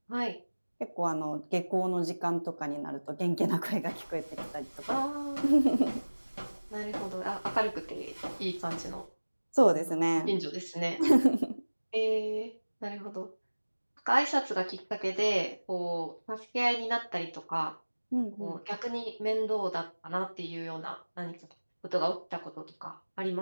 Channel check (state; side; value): inverted; both; correlation -1.00